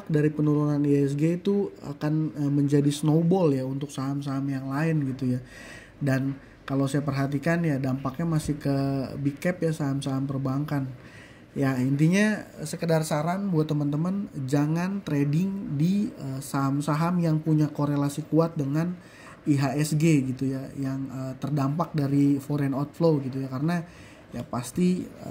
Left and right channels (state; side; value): identical; both; correlation 1.00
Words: dari penurunan IHSG itu akan menjadi snowball ya untuk saham-saham yang lain gitu ya. Dan kalau saya perhatikan ya dampaknya masih ke big cap ya, saham-saham perbankan. Ya intinya sekedar saran buat teman-teman, jangan trading di saham-saham yang punya korelasi kuat dengan IHSG gitu ya, yang terdampak dari foreign outflow gitu ya, karena ya pasti